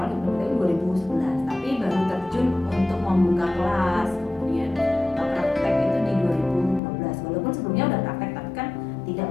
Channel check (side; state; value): right; drops out; at 6.8 s